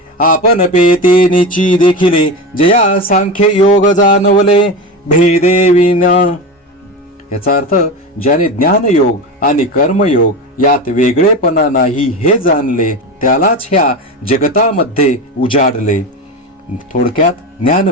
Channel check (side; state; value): both; normal; correlation 0.23